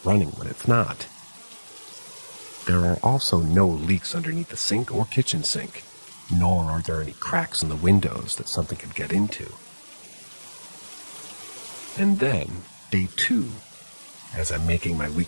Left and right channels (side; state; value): both; inverted; correlation -1.00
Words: running when it's not. There are also no leaks underneath the sink or kitchen sink, nor are there any cracks in the windows that something could get into. And then, day 2, as I'm making my